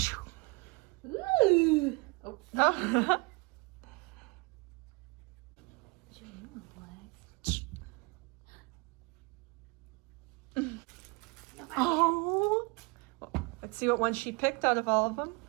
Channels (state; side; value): quieter; left; 27.3 dB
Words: Ooh. Oh. Oh. Oh. Let's see what one she picked out of all of them.